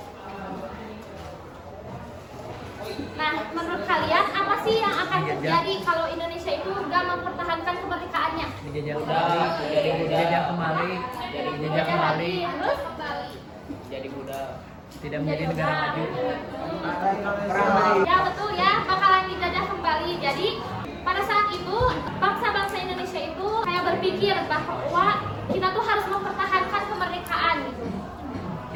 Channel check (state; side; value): identical; both; correlation 1.00